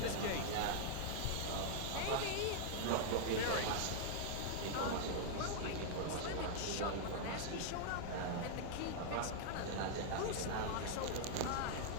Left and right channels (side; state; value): both; different; correlation -0.01